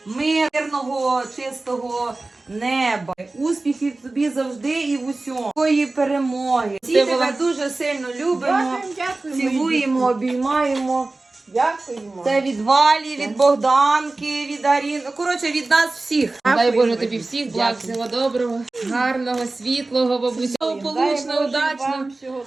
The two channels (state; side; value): quieter; left; 3.2 dB